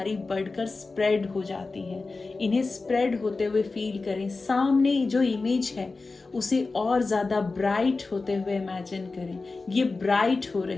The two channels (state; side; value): quieter; right; 3.8 dB